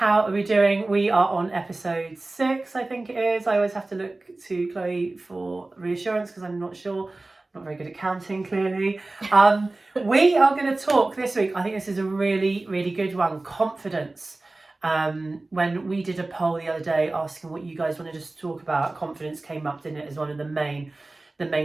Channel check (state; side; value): quieter; left; 3.0 dB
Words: are we doing? We are on episode 6, I think it is. I always have to look to Chloe for reassurance because I'm not sure. Not very good at counting, clearly. We are going to talk this week. I think this is a really, really good one. Confidence. When we did a poll the other day asking what you guys wanted us to talk about, confidence came up, didn't it, as one of the